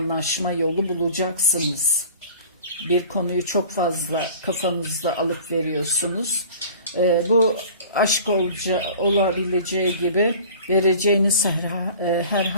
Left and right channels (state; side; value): inverted; both; correlation -0.43